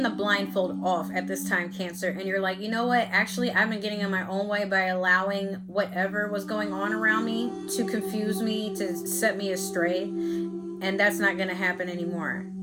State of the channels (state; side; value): identical; both; correlation 1.00